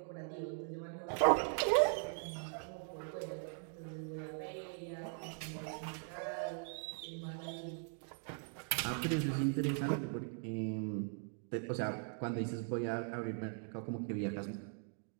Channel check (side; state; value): left; silent; 51 dB below the other